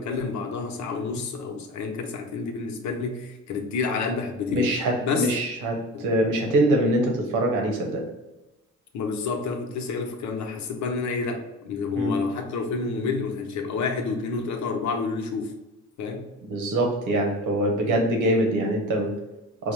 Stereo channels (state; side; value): normal; both; correlation 0.31